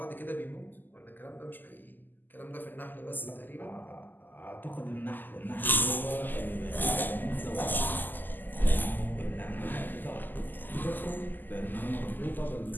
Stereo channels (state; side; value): late; right; 0.088 ms